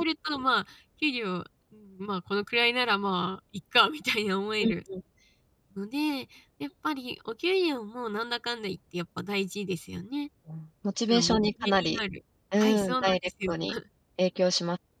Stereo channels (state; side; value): identical; both; correlation 1.00